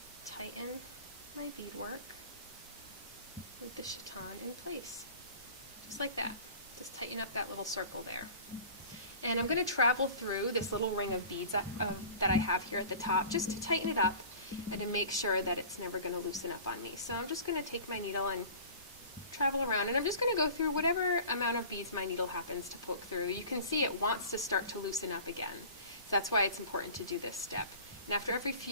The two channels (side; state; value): both; inverted; correlation -0.41